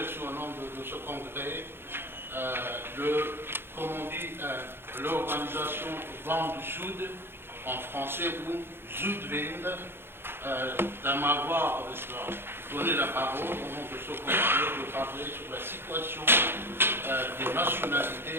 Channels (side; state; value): left; late; 0.11 ms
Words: au nom de ce congrès l'organisation Vent du Sud, en français, ou Zuidwind, de m'avoir donné la parole au nom de ce congrès de parler sur la situation des